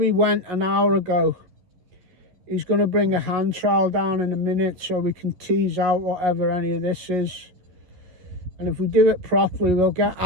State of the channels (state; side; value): late; left; 11 ms